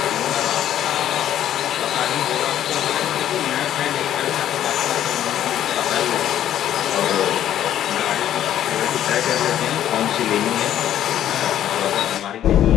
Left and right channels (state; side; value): quieter; right; 11.3 dB